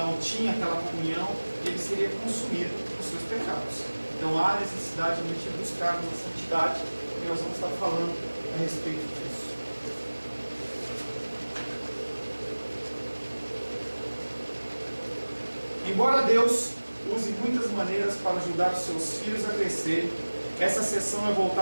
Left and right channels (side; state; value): both; inverted; correlation -1.00